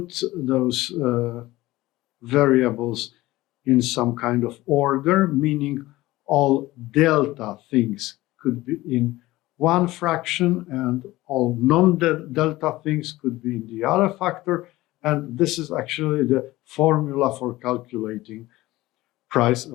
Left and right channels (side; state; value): right; quieter; 18.1 dB